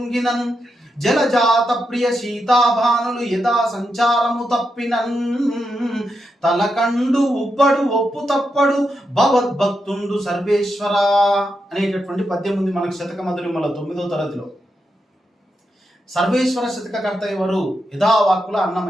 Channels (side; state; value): both; normal; correlation 0.85